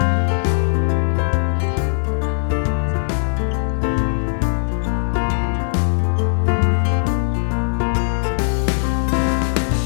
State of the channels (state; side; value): silent; right; digital silence